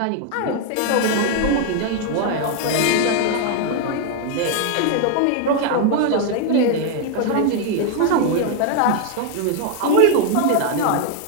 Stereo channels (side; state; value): both; different; correlation 0.00